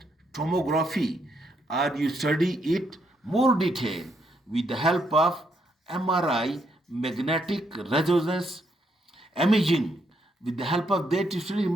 tomography, or you study it more detail with the help of MRI, magnetic resonance imaging. With the help of that, you study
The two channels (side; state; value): both; normal; correlation 0.75